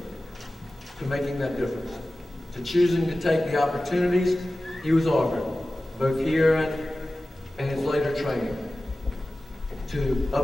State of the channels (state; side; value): normal; both; correlation 0.96